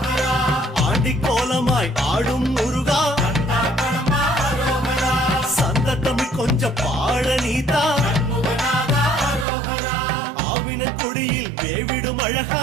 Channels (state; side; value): drops out; left; at 9.5 s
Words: ஆண்டி கோலமாய் ஆடும் முருகா, சந்த தமிழ் கொஞ்சம் பாட நீதா, ஆவின கொடியில் வேவிடும் அழகா,